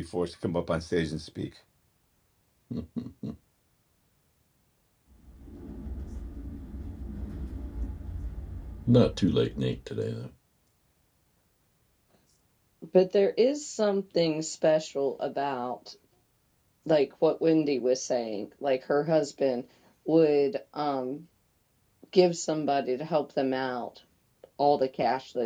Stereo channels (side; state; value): both; identical; correlation 1.00